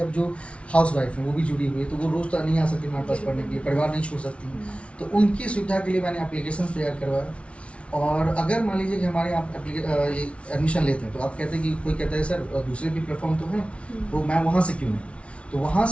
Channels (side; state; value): right; late; 0.061 ms